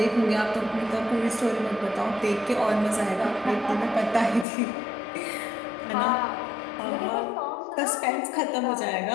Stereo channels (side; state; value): right; drops out; at 4.5 s